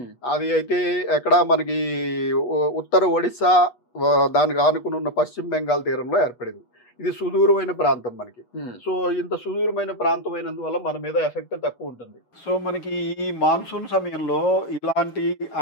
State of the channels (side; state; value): right; late; 8.3 ms